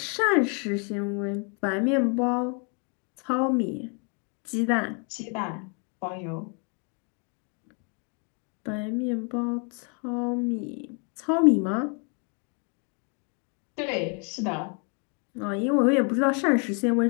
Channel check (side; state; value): right; quieter; 37.9 dB